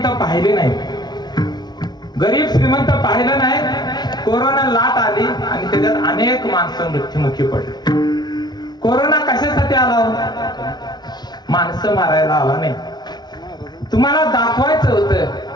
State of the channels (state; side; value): late; right; 0.20 ms